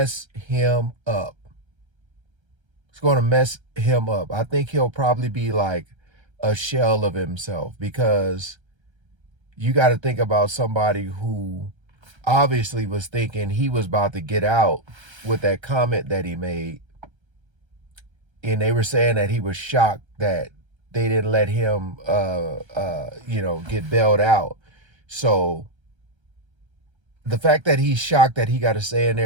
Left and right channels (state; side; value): late; left; 1.3 ms